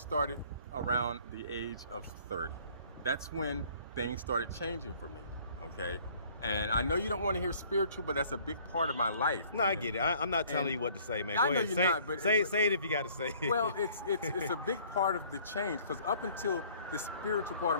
around the age of 30. That's when things started changing for me. Okay, and I know you don't want to hear spiritual, but that's a big part of my life. No, I man. get it. I'm not telling And you what to say, man. I Go know ahead. you're Say, not, but- say it if you got to say it. Well, it's a big part of the change, because up until the spiritual part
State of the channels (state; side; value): inverted; both; correlation -0.56